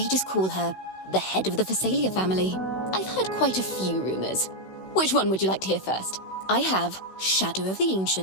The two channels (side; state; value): right; late; 16 ms